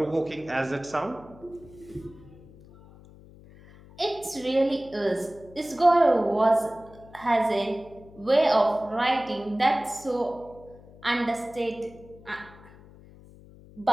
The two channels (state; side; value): noise; left; hum, 22 dB below the sound